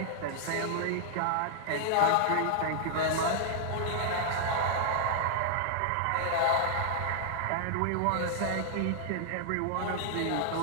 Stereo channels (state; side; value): different; both; correlation -0.01